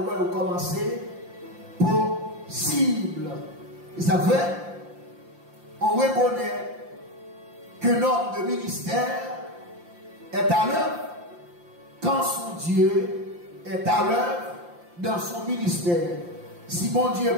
commencer possible. Et ça fait, on reconnaît que notre ministère est à l'œuvre quand son Dieu est à l'œuvre dans son ministère. Si mon Dieu n'est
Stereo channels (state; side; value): late; left; 5.8 ms